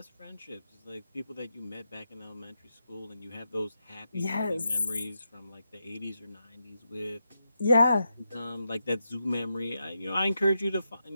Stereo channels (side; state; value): both; inverted; correlation -0.85